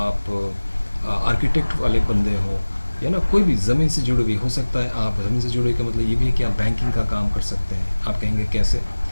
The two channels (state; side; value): inverted; both; correlation -1.00